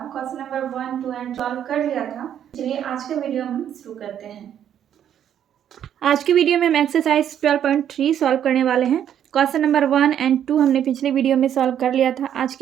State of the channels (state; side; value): quieter; left; 9.8 dB